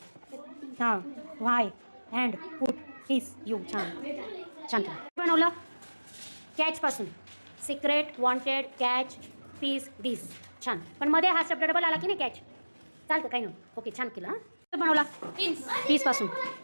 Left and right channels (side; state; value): both; inverted; correlation -1.00